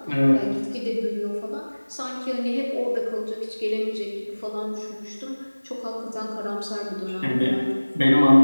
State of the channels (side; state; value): both; inverted; correlation -1.00